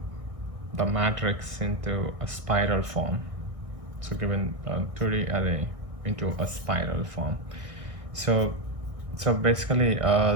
the matrix into a spiral form. So given a 2D array into a spiral form. So basically,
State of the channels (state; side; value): late; left; 1.6 ms